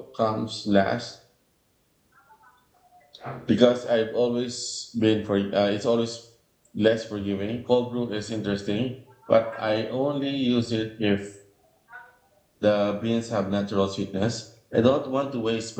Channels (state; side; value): identical; both; correlation 1.00